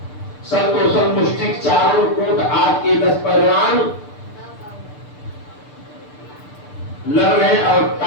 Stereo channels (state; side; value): late; right; 6.8 ms